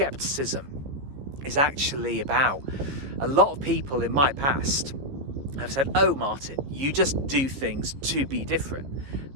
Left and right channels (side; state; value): left; late; 15 ms